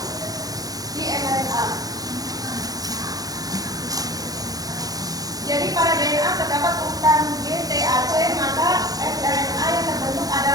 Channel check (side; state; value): left; late; 0.18 ms